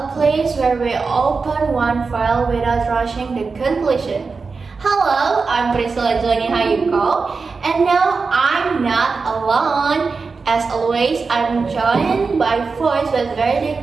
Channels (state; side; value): quieter; left; 4.6 dB